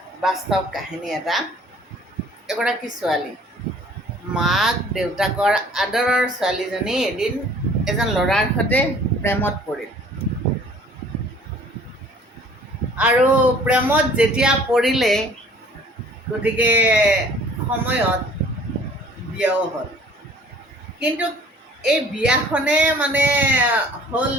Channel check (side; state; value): both; normal; correlation 0.52